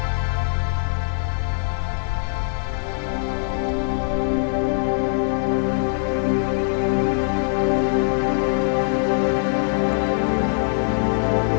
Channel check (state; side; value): silent; right; 59 dB below the other